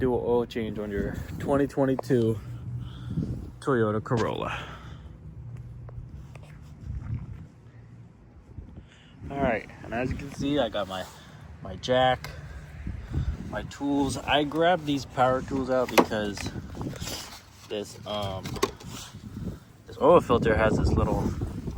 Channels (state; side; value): identical; both; correlation 1.00